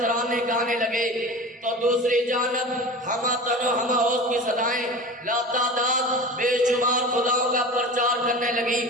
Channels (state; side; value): normal; both; correlation 0.33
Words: گانے لگے، تو دوسری جانب ہما تن و ہما اوز کی صدائیں لاتعداد بے شمار خداؤں کا پرچار کرنے لگی۔